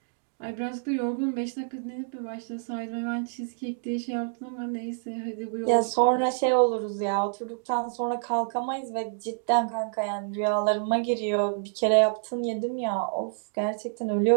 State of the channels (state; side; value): silent; left; digital silence